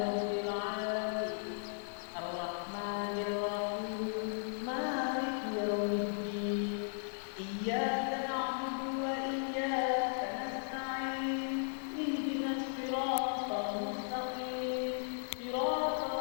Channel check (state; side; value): silent; right; digital silence